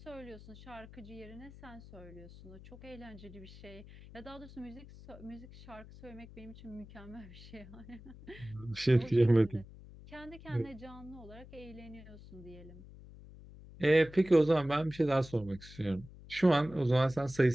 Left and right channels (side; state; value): left; noise; hum, 18 dB below the sound